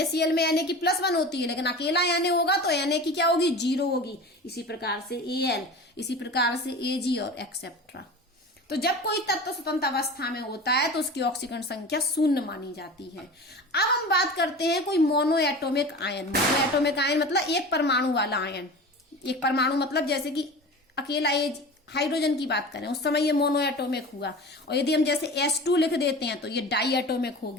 में Na की +1 होती है, लेकिन अकेला Na होगा तो Na की क्या होगी? 0 होगी। इसी प्रकार से Al, इसी प्रकार से Ag और एक्सेट्रा। तो जब कोई तत्व स्वतंत्र अवस्था में होता है तो उसकी ऑक्सीकरण संख्या 0 मानी जाती है। अब हम बात करते हैं कोई मोनोएटोमिक आयन। मोनोएटोमिक आयन मतलब एक परमाणु वाला आयन। एक परमाणु मतलब जैसे कि अकेला ये हाइड्रोजन की बात करें, उस समय ये मोनोएटोमिक हुआ। और यदि हम जैसे H2 लिख देते हैं तो ये डाईएटोमिक हो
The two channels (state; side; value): normal; both; correlation 0.34